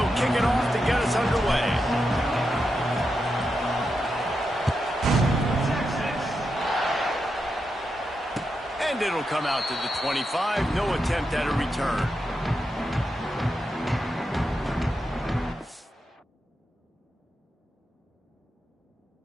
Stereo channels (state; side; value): normal; both; correlation 0.86